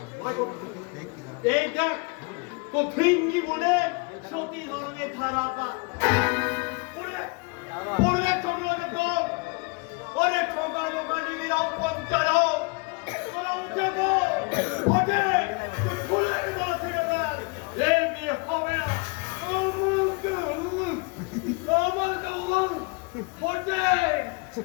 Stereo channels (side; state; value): right; quieter; 30.2 dB